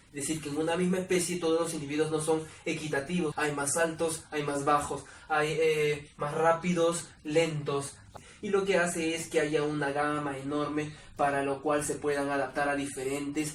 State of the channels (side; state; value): both; identical; correlation 1.00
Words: Es decir, que en una misma especie todos los individuos no son equitativos. Hay más altos, hay más bajos, hay más rápidos, lentos. Y lo que hace es que haya una gama enorme para lo cual se puedan adaptar a diferentes